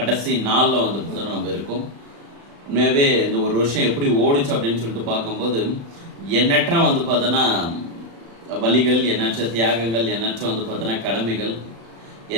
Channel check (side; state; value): left; late; 35 ms